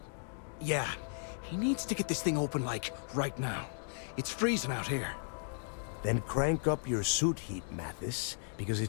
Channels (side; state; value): right; silent; digital silence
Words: Yeah, he needs to get this thing open, like, right now. It's freezing out here. Then crank up your suit heat, Mathis, because